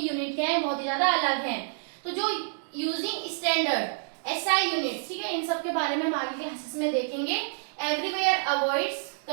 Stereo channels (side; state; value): left; silent; digital silence